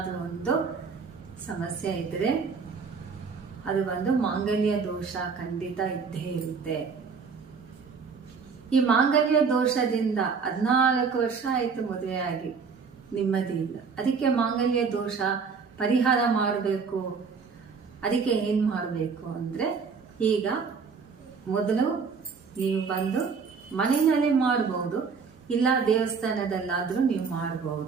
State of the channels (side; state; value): left; quieter; 5.4 dB